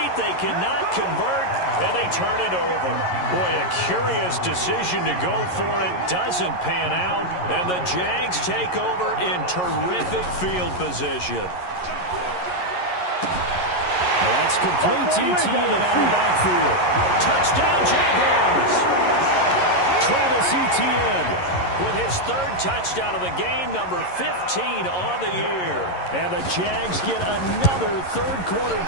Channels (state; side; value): late; right; 11 ms